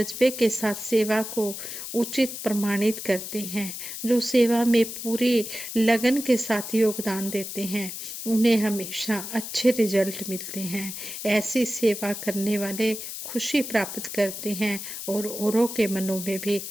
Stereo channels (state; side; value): noise; left; hiss, 8 dB below the sound